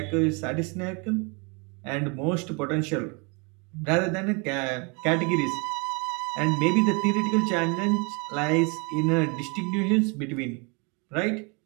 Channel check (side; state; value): left; quieter; 32.0 dB